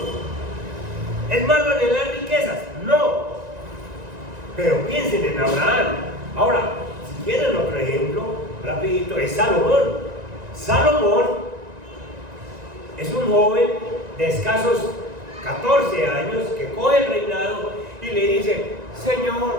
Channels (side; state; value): left; late; 1.9 ms